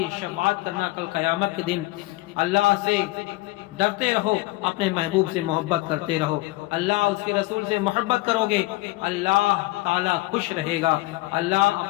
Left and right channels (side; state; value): right; quieter; 20.6 dB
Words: شفاعت کرنا کل قیامت کے دن۔ اللہ سے ڈرتے رہو، اپنے محبوب سے محبت کرتے رہو۔ اللہ اس کے رسول سے محبت کرو گے، اللہ تعالی خوش رہے گا۔ اللہ